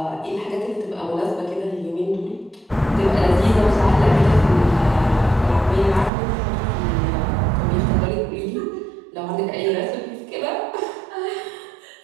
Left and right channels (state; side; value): drops out; left; at 6.1 s